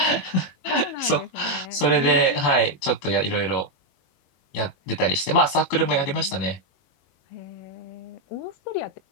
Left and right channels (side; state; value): right; late; 22 ms